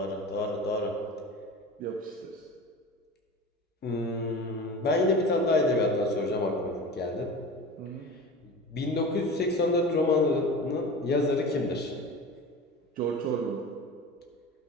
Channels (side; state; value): both; normal; correlation 0.33